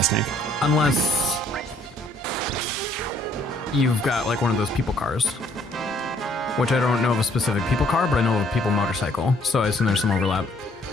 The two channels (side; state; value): both; normal; correlation 0.63